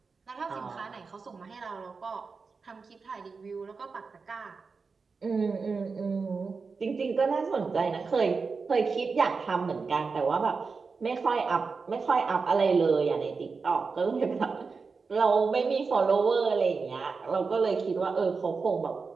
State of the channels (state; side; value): quieter; left; 4.7 dB